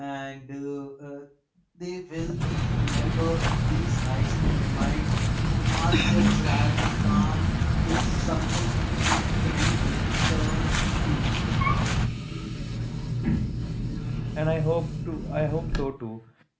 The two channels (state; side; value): identical; both; correlation 1.00